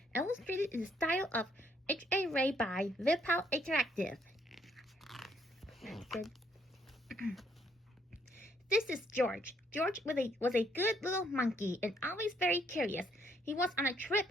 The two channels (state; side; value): normal; both; correlation 0.69